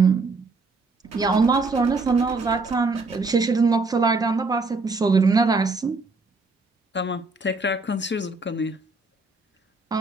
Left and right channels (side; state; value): left; quieter; 3.6 dB